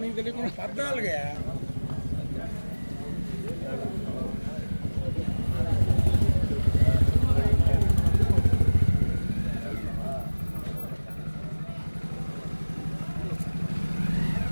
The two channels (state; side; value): inverted; both; correlation -1.00